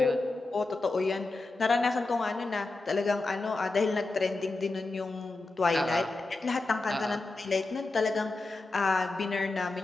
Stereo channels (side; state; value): right; quieter; 3.3 dB